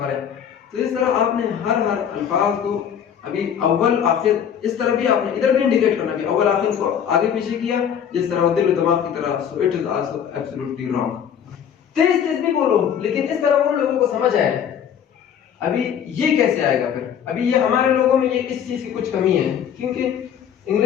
है। तो इस तरह आपने हर अल्फाज को अभी अव्वल आखिर इस तरह भी आपने इधर भी इंडिकेट करना कि अव्वल आखिर को आगे पीछे किया जिस तरह दिल दिमाग की तरह। So it is also absolutely wrong. तेज तेज भी बोलो लेकिन इस तरह बोलो लोगों को समझ आए। अभी ये कैसे आएगा फिर? अभी ये हमारे लोगों में ये इस चीज की कुछ कमी है, क्योंकि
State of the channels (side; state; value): right; quieter; 8.6 dB